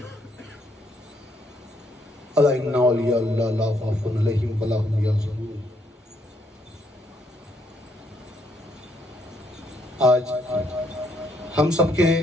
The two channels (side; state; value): both; normal; correlation 0.72